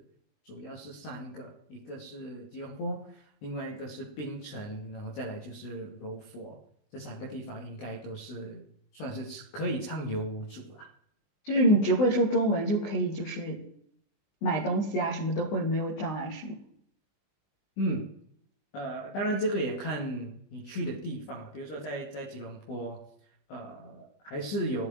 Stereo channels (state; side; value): late; right; 20 ms